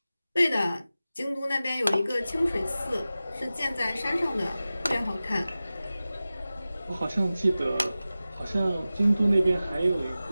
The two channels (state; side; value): inverted; both; correlation -0.95